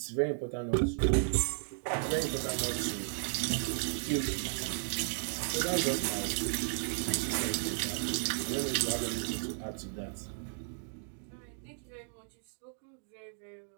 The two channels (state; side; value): silent; left; digital silence